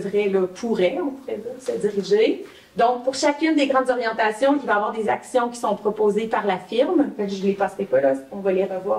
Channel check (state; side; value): identical; both; correlation 1.00